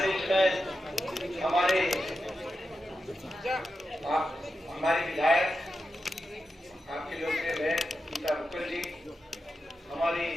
में हमारे विधायक आपके लोकप्रिय बहन गीता बुक्कल जी, हमारी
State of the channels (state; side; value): normal; both; correlation 0.90